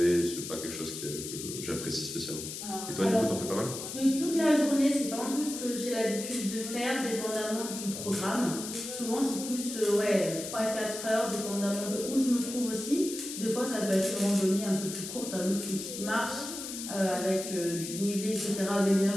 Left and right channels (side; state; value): left; noise; hiss, 8 dB below the sound